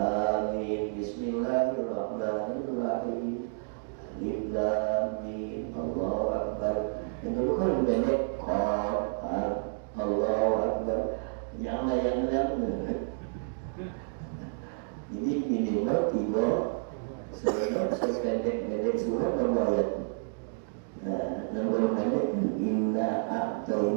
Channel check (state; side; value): silent; left; digital silence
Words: Bismillahirrahmanirrahim. Alif Lam Mim. Allahu Akbar. Yang dulu kan pendek. Allahu Akbar. Jangan yang lain. Jadi minimal 3 sependek surat ayat. Nah, yang pendek inna